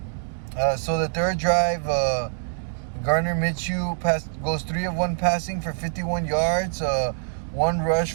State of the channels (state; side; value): silent; left; digital silence